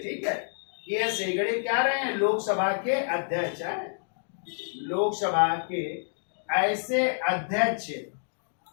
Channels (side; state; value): right; silent; digital silence